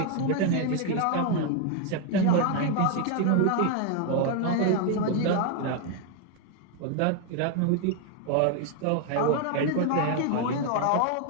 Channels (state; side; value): different; both; correlation 0.01